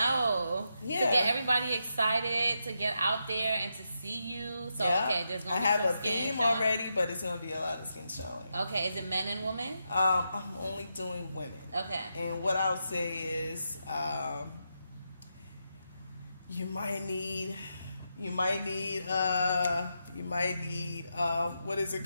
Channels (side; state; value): both; inverted; correlation -0.84